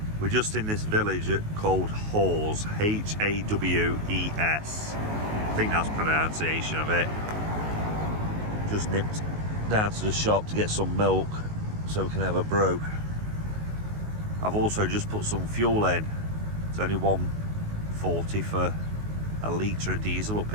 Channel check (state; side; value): late; left; 19 ms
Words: We're just in this village called Hawes, H-A-W-E-S. I think that's pronunciation of it. Just nipped down to the shop to get some milk so we can have a brew. I've also just put some fuel in. It's only £1.40 for a litre of diesel up